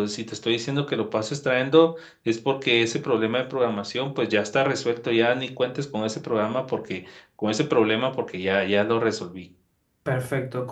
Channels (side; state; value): both; identical; correlation 1.00